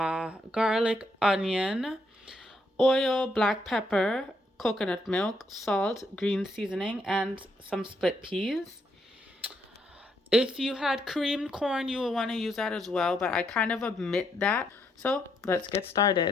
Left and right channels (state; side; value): normal; both; correlation 0.75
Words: onion, oil, black pepper, coconut milk, salt, green seasoning, and some split peas. If you had creamed corn, you would want to use that as well, but I kind of omit that. So let's get